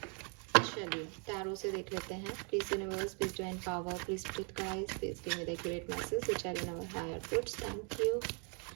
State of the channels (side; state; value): left; quieter; 37.6 dB